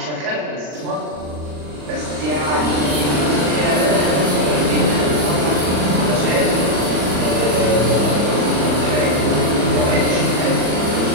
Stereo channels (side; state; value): left; late; 40 ms